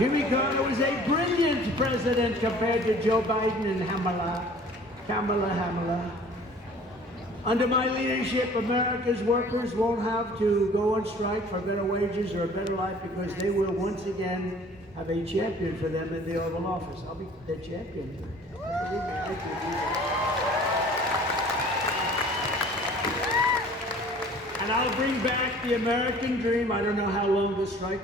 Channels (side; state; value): both; normal; correlation 0.49